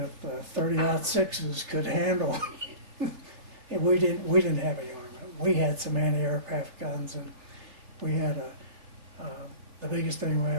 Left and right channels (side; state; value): left; late; 3.3 ms